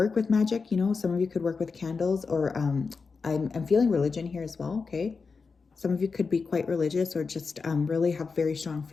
with magic, you know, some of you could work with candles, or I'm feeling religion here as well, okay? Some of you could be quite religious, or just really have very strong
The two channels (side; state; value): right; quieter; 4.8 dB